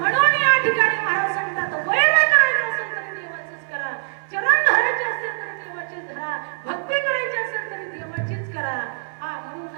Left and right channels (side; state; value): left; silent; 58 dB below the other